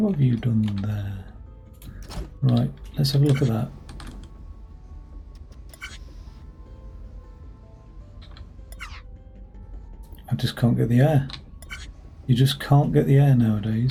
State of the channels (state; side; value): identical; both; correlation 1.00